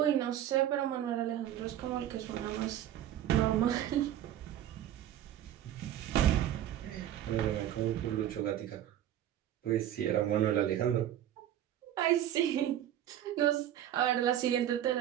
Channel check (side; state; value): left; quieter; 11.5 dB